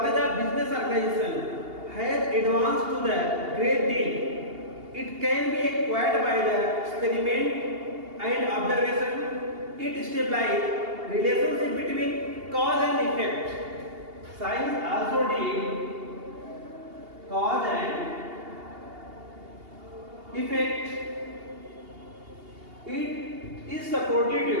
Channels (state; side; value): late; left; 2.8 ms